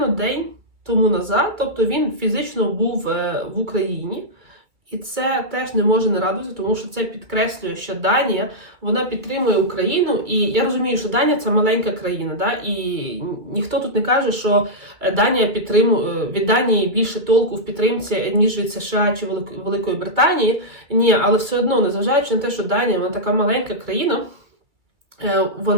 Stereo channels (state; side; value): late; left; 2.3 ms